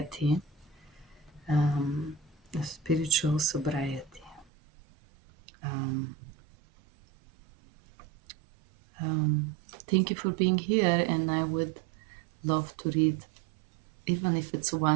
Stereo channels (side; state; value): left; drops out; at 4.5 s